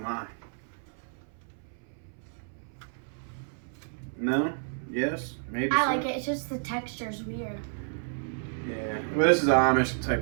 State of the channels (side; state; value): left; silent; 57 dB below the other